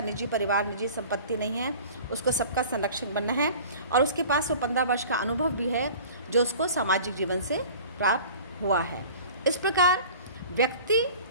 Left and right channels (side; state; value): both; inverted; correlation -0.43